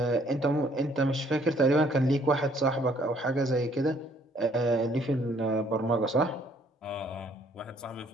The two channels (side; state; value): both; normal; correlation 0.63